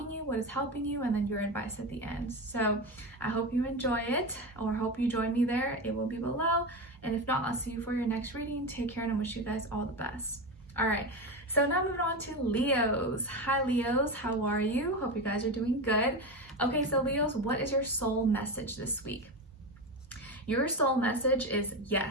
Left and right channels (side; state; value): both; normal; correlation 0.19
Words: you, what is helping you, and then your advice at the end. So I hope you enjoy it, or hope you join me there. It will be below, and if not, I'll see you for your next reading. Take care, and I wish you guys all the best. All right, so now moving on to Leos. Hi Leos, how are you? Hope you guys are doing good. Okay, so Leos, what is your soul message this week? Your soul message is